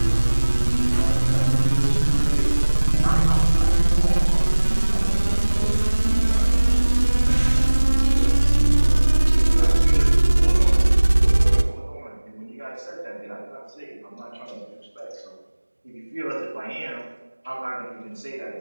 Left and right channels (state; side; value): inverted; both; correlation -1.00